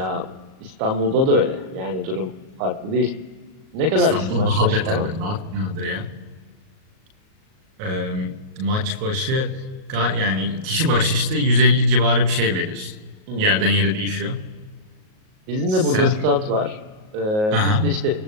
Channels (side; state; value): left; late; 38 ms